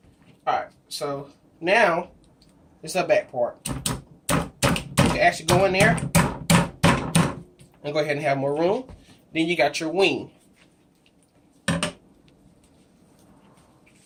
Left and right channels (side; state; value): both; identical; correlation 1.00